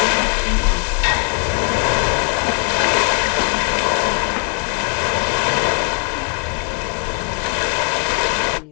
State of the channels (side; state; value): right; quieter; 38.8 dB